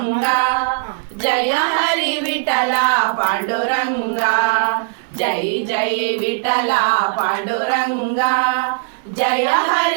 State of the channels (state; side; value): silent; left; digital silence